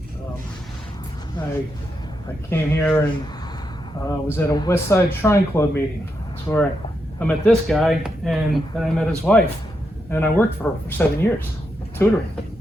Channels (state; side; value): normal; both; correlation 0.83